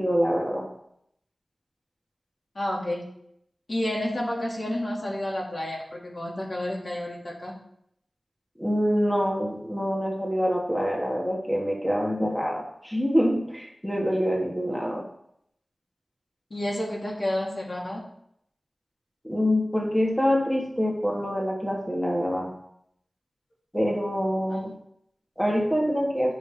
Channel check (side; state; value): both; normal; correlation 0.97